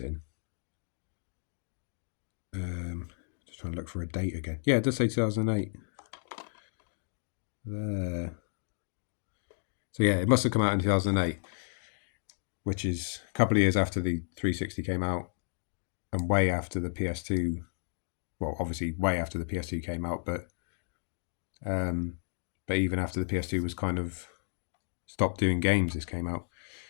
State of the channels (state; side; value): silent; right; digital silence